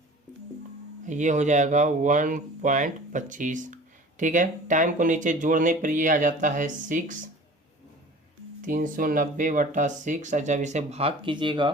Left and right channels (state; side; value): normal; both; correlation 0.43